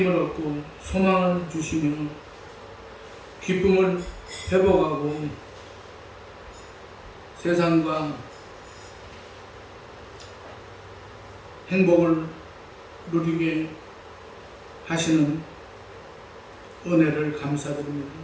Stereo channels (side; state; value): both; identical; correlation 1.00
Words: 얻고 소망을 주시며 기쁨을 회복하고 세상과 행복을 누리게 하시는 은혜를 감사드립니다.